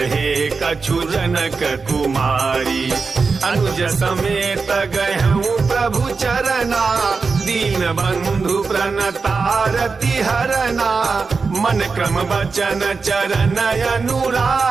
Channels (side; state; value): left; quieter; 4.6 dB